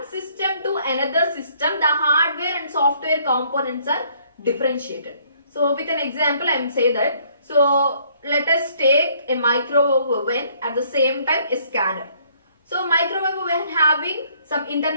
system to another system, the hardware and software components are differentiated. So with an example I am say that, so let us take a microwave oven, at the same time a scanner. So microwave oven having some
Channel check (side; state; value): both; inverted; correlation -0.63